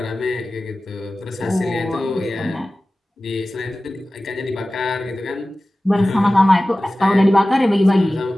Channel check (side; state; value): both; normal; correlation 0.96